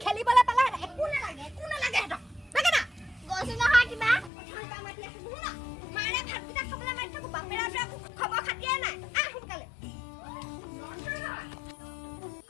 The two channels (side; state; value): right; drops out; at 4.3 s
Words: খেলিবলৈ পালে একো নালাগে হেতক লাগে না গৈছে নহয় কিবা অথনি বা মাতি আছো নুশুনা মাৰে ভাতকেইটা খাবলৈ মাতি থাকো বাপেৰা খবৰ খাতিয়ে নাই সোনকালে